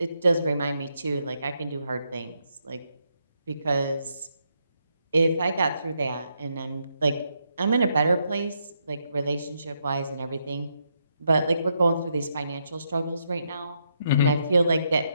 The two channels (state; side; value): inverted; both; correlation -0.79